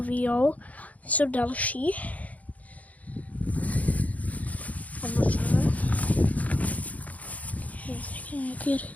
víjou, jsou další. Nějaký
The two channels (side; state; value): right; late; 0.072 ms